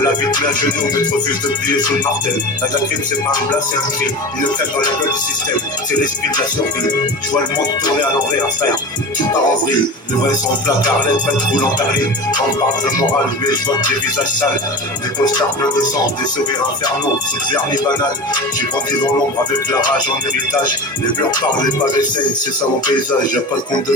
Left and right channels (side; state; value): both; normal; correlation 0.29